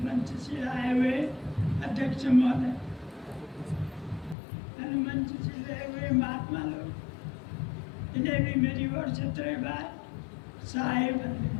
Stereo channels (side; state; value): right; drops out; at 4.4 s